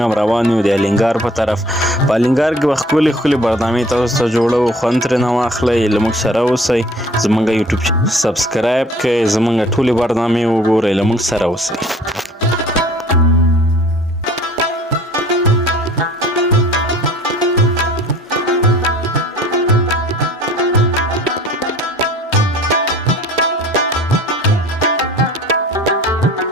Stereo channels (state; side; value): normal; both; correlation 0.51